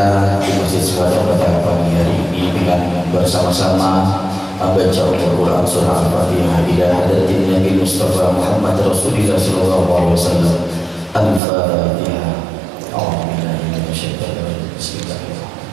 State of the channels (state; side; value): drops out; left; at 11.4 s